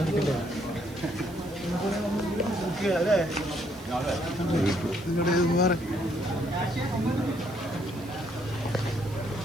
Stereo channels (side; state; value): right; noise; hiss, 21 dB below the sound